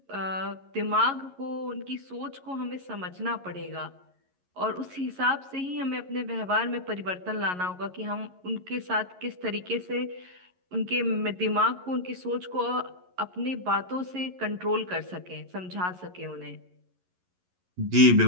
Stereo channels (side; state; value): left; late; 11 ms